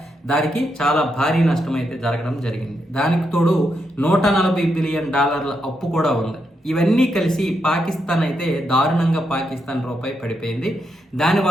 దానికి చాలా భారీ నష్టం అయితే జరగడం జరిగింది. దానికి తోడు $140 బిలియన్ అప్పు కూడా ఉంది. ఇవన్నీ కలిసి పాకిస్తాన్ అయితే దారుణంగా పాకిస్తాన్ రూపాయి పడిపోయింది.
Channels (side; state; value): both; normal; correlation 0.82